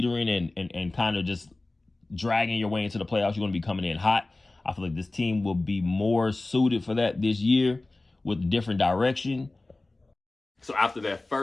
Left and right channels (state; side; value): quieter; right; 3.0 dB